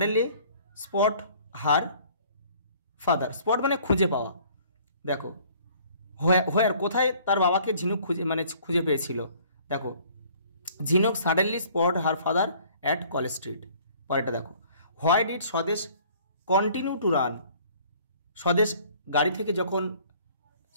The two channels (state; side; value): inverted; both; correlation -0.55